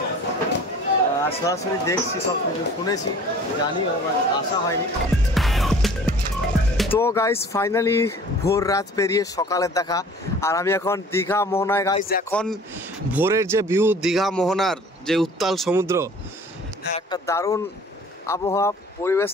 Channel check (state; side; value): normal; both; correlation 0.48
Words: আর সরাসরি দেখছি, সব কিছু শুনেছি, জানি, আসা হয়নি। তো গাইস, ফাইনালি ভোর রাত পেরিয়ে সকালের দেখা, আর আমি এখন দীঘা মোহনায়। গাইস, এখন ভোরের যে ভিউ, দীঘা মোহনার যে উত্তাল সমুদ্র, একটা দারুণ আবহাওয়া পরিবেশ,